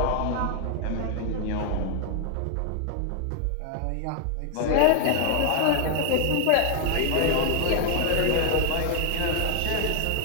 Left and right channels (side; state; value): both; different; correlation 0.00